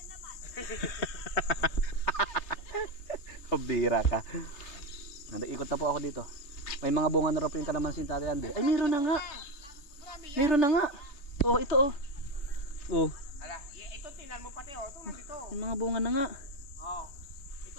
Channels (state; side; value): late; right; 3.3 ms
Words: Bira ka. Nag-ikot na po ako dito. May mga bunga na raw po yung kalamansi ni Tatay Andy. Ay, meron na nga. Meron na nga. Oh, ito oh. Oh, Ala, ito tingnan mo pati oh, ito nandito. yung mga bunga na nga. Oh.